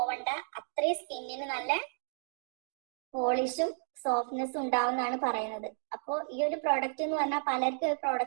അത്രയും സ്കിന്നിന് നല്ല പോളിഷും സോഫ്റ്റ്നെസ്സും ഉണ്ടാവും എന്നാണ് പറയുന്നത്. അപ്പോൾ ഈ ഒരു പ്രോഡക്റ്റ് എന്ന് പറഞ്ഞാൽ പലർക്കും ഈ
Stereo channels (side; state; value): left; silent; digital silence